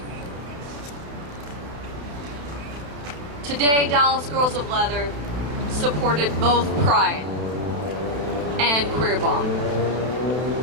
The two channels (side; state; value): left; late; 31 ms